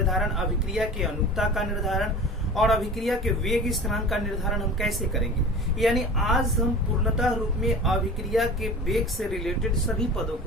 अभिक्रिया के अनुक्ता का निर्धारण और अभिक्रिया के वेग स्थिरांक का निर्धारण हम कैसे करेंगे। यानी आज हम पूर्णतः रूप में अभिक्रिया के वेग से रिलेटेड सभी पदों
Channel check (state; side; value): normal; both; correlation 0.37